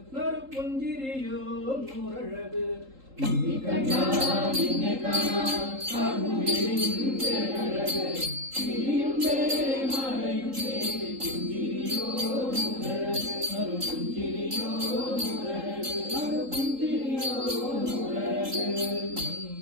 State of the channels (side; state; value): left; late; 3.8 ms